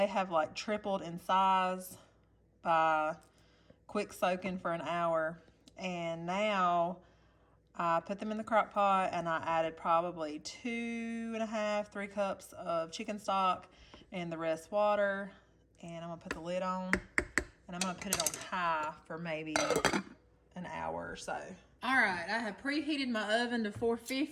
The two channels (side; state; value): both; identical; correlation 1.00